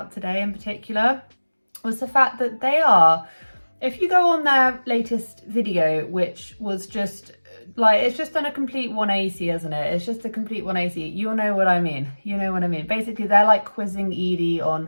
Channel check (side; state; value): both; inverted; correlation -1.00